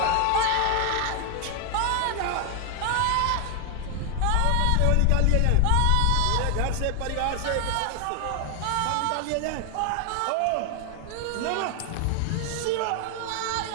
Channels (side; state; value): both; different; correlation 0.00